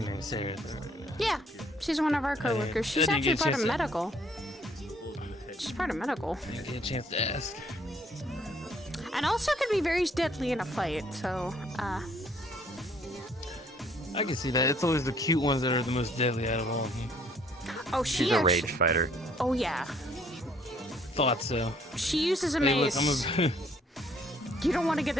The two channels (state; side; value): normal; both; correlation 0.62